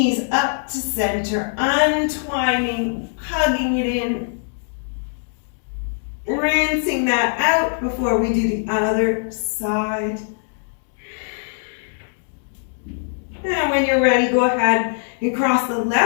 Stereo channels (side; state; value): right; silent; digital silence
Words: up to center, untwining, hugging it in, rinsing that out before we do the other side. And when you're ready, go ahead and cross the